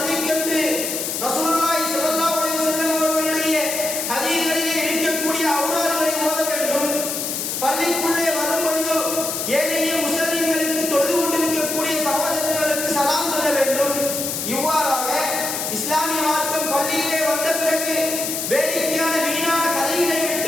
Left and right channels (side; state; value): left; noise; hiss, 3 dB below the sound